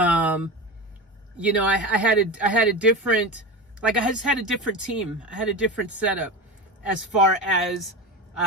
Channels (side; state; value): both; normal; correlation 0.25